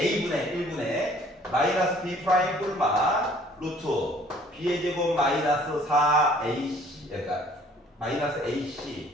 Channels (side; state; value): both; normal; correlation 0.56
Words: 1분의 마이너스 b 프라임 뿔마 루트 b의 제곱 마이너스 4ac 그러니까 마이너스